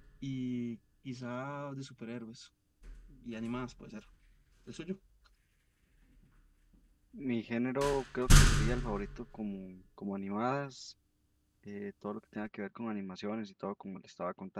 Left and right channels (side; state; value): both; identical; correlation 1.00